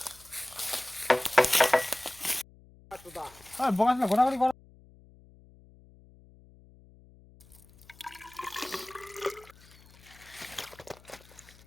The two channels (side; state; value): left; noise; hum, 25 dB below the sound